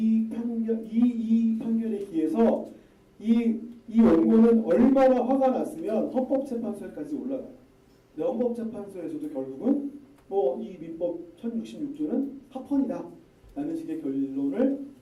판결에 기해서 이 원고는 얼마나 화가 났으면 헌법재판소에까지 올라가요. 근데 헌법재판소에서도 결국은 뭐 이 민법 1066조는 합헌이다 라는 식의 결론을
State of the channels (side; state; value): both; identical; correlation 1.00